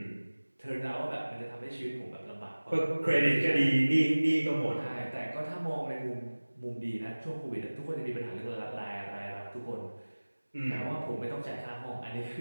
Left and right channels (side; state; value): both; inverted; correlation -1.00